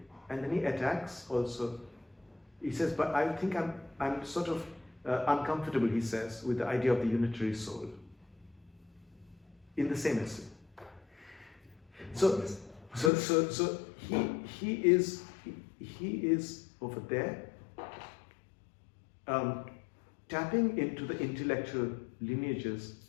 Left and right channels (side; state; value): right; drops out; at 13.1 s